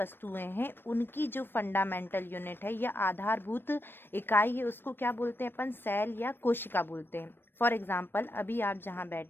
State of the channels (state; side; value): late; right; 0.099 ms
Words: हैं उनकी जो फंडामेंटल यूनिट है या आधारभूत इकाई है उसको क्या बोलते हैं अपन? सेल या कोशिका बोलते हैं। फॉर एग्जाम्पल, अभी आप जहाँ